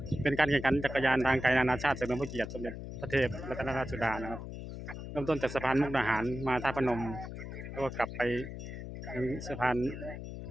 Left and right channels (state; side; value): noise; left; hum, 9 dB below the sound